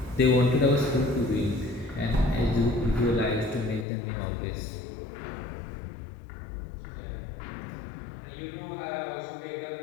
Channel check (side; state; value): right; drops out; at 3.9 s